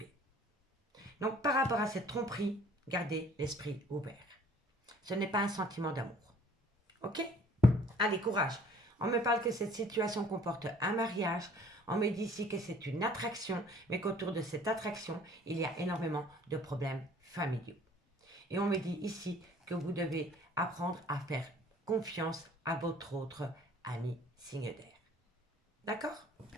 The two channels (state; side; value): normal; both; correlation 0.54